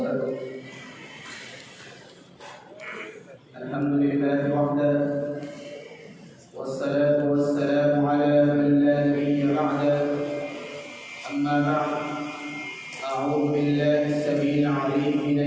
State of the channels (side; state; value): both; identical; correlation 1.00